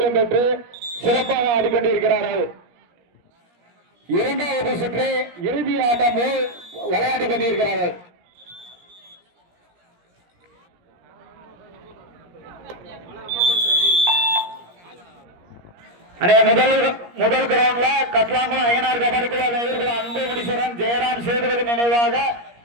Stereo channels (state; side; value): late; left; 17 ms